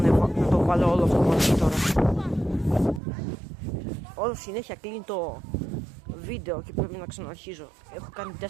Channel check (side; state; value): left; drops out; at 3.0 s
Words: το βάλω όλο αυτό μαζί τώρα. Όλο συνέχεια κλείνει το βίντεο και πρέπει να ξαναρχίζω. Έχω κάνει 4